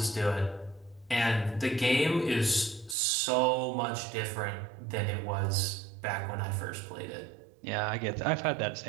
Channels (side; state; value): left; drops out; at 3.0 s